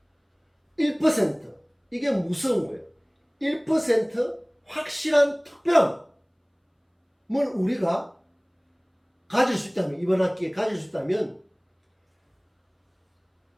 1%. 이게 무서운 거예요. 1% 확실한 특별함을 우리가 가질 수 있다면, 이번 학기에 가질 수 있다면,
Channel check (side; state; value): both; identical; correlation 1.00